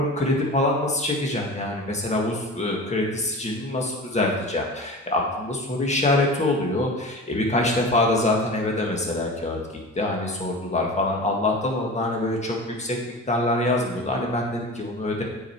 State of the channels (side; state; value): both; normal; correlation 0.33